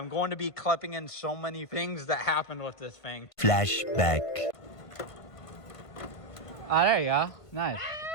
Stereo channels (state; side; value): late; right; 1.5 ms